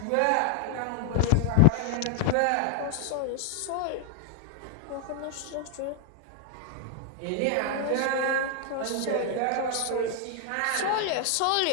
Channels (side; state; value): both; different; correlation 0.00